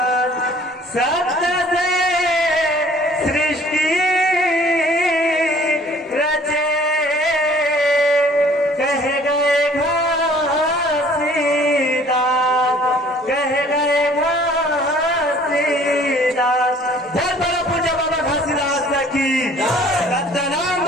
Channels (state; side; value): normal; both; correlation 0.54